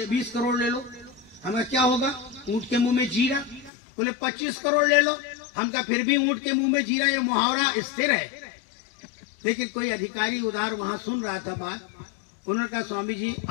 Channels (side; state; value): right; drops out; at 3.7 s